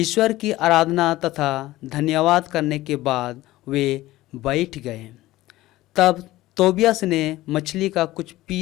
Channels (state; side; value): quieter; right; 17.0 dB